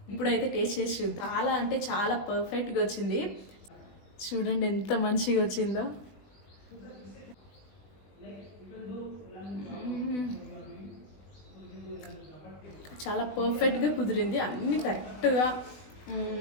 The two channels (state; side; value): late; right; 20 ms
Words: ఇప్పుడైతే టేస్ట్ చేసి చూద్దాం. చాలా అంటే చాలా పర్ఫెక్ట్గా వచ్చింది. చూడండి ఎంత మంచిగా వచ్చిందో. చాలా పర్ఫెక్ట్గా కుదిరింది. అన్నీ కరెక్ట్గా